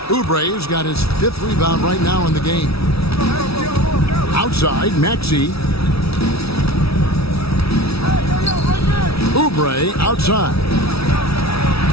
Oubre's got his 5th rebound right now in the game. Outside, Maxey. Oubre outside.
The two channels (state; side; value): late; right; 0.76 ms